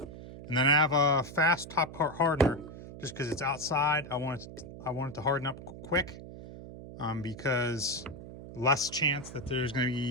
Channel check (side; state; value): right; noise; hum, 13 dB below the sound